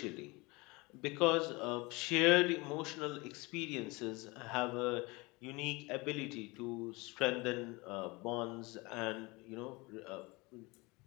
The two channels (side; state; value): right; quieter; 24.8 dB